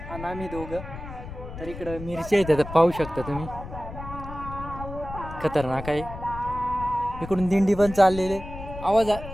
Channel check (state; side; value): noise; left; rumble, 11 dB below the sound